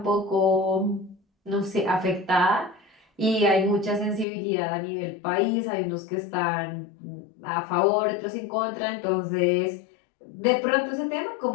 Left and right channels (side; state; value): right; drops out; at 4.2 s